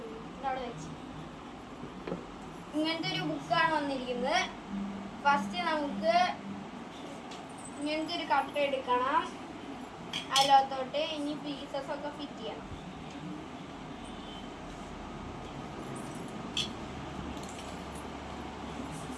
ഇതവിടെ വെച്ച് ഇങ്ങനത്തെ ഒരു ബുക്കാണ് വന്നിരിക്കുന്നത്. ഫസ്റ്റ് നമുക്ക് ഇങ്ങനത്തെ ഒരു കട്ട എടുക്കണം. അതിലോത്തോട്ട് ഇനി പീസസ് ഒക്കെ ഫിറ്റ് ചെയ്യണം.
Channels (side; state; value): both; identical; correlation 1.00